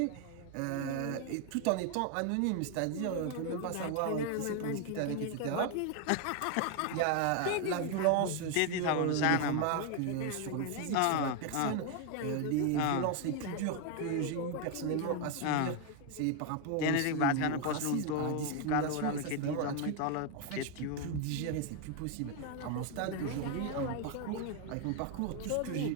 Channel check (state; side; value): different; both; correlation 0.01